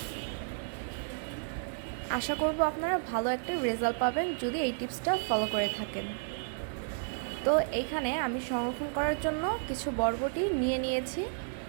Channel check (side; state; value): left; silent; digital silence